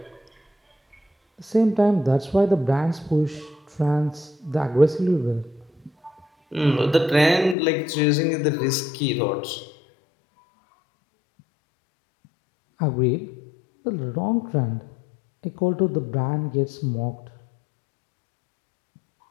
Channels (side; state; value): right; drops out; at 7.6 s